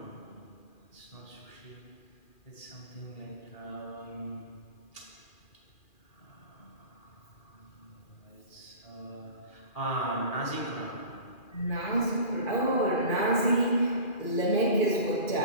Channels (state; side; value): late; right; 2.4 ms